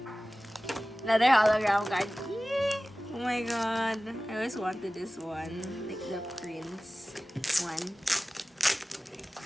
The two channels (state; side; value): normal; both; correlation 0.97